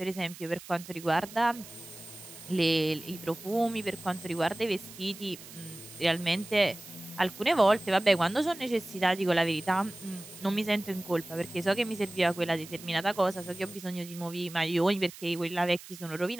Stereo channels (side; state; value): right; noise; hiss, 16 dB below the sound